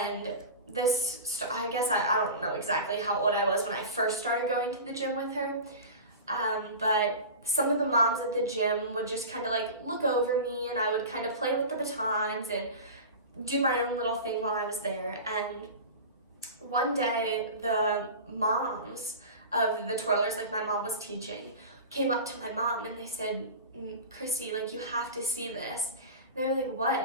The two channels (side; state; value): both; inverted; correlation -0.31